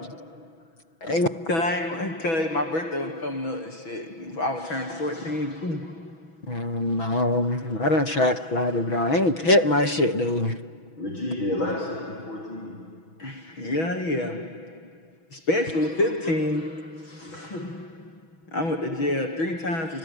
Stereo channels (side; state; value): right; late; 6.1 ms